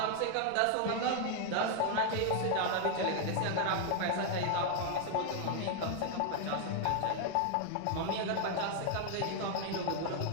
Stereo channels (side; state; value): both; different; correlation 0.00